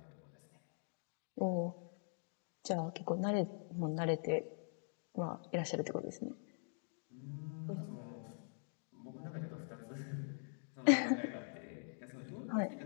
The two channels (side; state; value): right; silent; digital silence